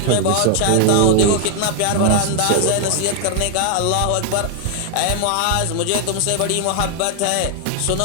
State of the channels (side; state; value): both; different; correlation 0.00